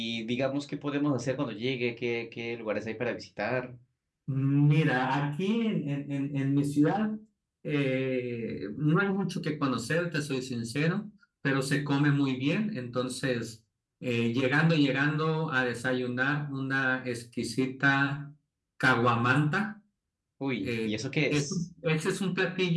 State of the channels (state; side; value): identical; both; correlation 1.00